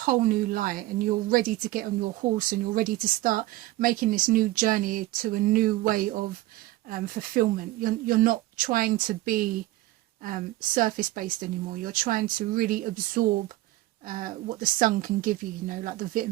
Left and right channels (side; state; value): left; quieter; 17.2 dB